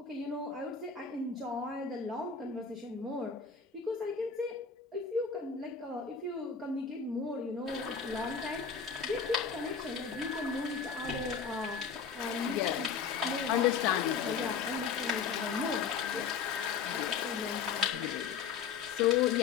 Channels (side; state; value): right; quieter; 6.2 dB